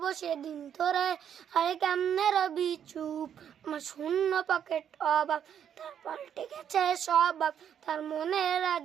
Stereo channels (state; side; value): quieter; left; 8.9 dB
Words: সেদিন তোরে আরে কেমনে রবি চুপ, আমার শূন্য পকেট অভাব তার পাল্টে গেছে স্বভাব, তার মনে